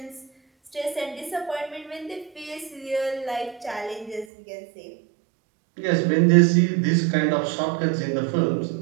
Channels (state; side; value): drops out; left; at 4.2 s